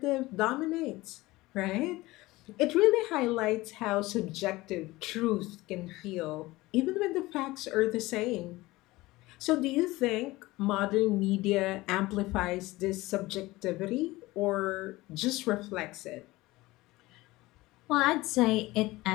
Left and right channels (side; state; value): right; quieter; 19.6 dB